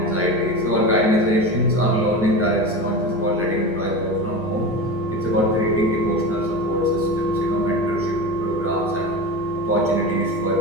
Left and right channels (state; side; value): normal; both; correlation 0.26